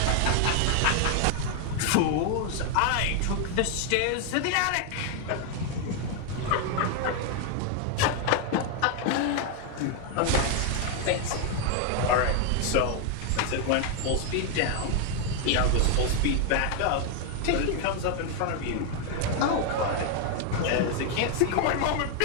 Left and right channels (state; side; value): different; both; correlation 0.01